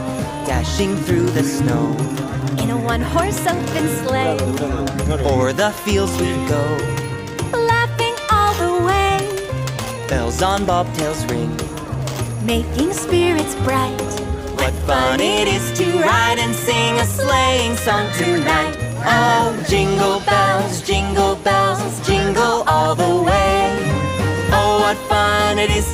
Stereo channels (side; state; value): both; identical; correlation 1.00